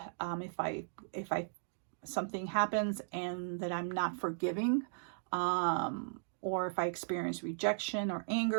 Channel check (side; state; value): left; silent; digital silence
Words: if something happens and that I'm not forgiving, or if I experience rejection or